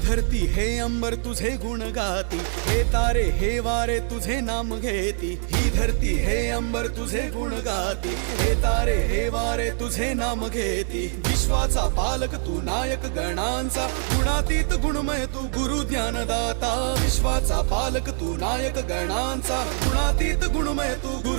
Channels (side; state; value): left; silent; 55 dB below the other